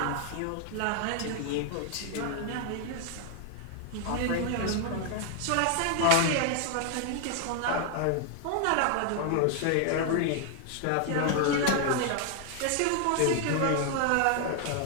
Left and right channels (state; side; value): different; both; correlation 0.00